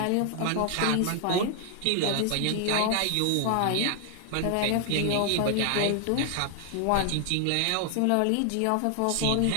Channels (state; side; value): different; both; correlation 0.00